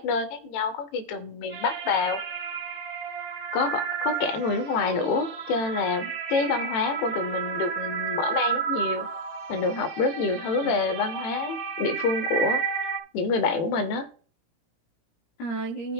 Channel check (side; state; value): right; late; 18 ms